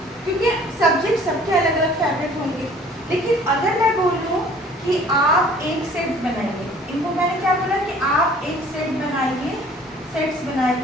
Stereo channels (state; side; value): normal; both; correlation 0.52